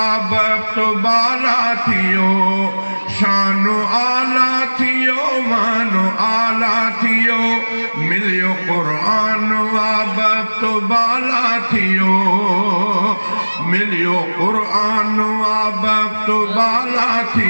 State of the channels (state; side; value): inverted; both; correlation -1.00